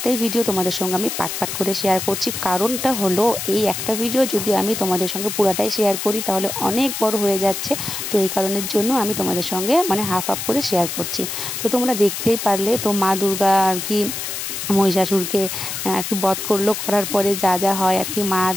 ভিডিও তোমাদের সঙ্গে আমি পাট করে শেয়ার করছি। কারণটা হলো এই একটা ভিডিও যদি আমি তোমাদের সঙ্গে পুরাটাই শেয়ার করি তাহলে অনেক বড় হয়ে যাচ্ছে। তো এই কারণের জন্য আমি তোমাদের সঙ্গে হাফ করে শেয়ার করছি। তো তোমরা দেখতেই পারলে, তো মা দুর্গা আর কি মহিষাসুরকে আর কি বধ করলো, করার পরে যা যা হয় আর কি, মা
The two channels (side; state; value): left; noise; hiss, 5 dB below the sound